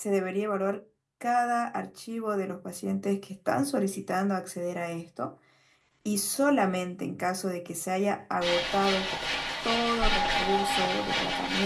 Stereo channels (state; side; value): identical; both; correlation 1.00